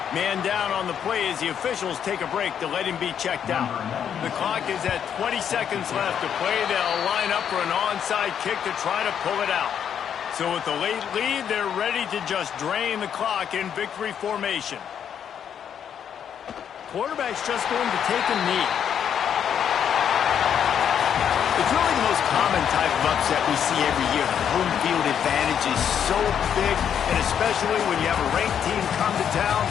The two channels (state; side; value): quieter; right; 8.6 dB